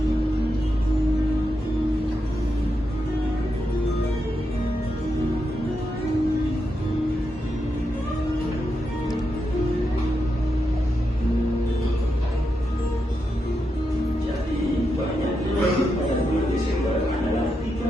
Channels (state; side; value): normal; both; correlation 0.85